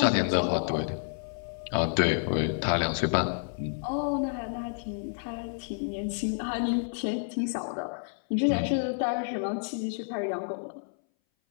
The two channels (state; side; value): silent; right; 58 dB below the other